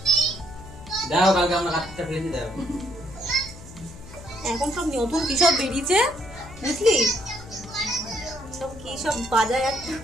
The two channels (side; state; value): left; noise; hum, 17 dB below the sound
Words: দাও, কালকে আমরা কাটতে ফেলেছি দাও। এখন সব নতুন কি সব বেরিয়েছে বুঝলি, সব কি সব বাজায় একটা।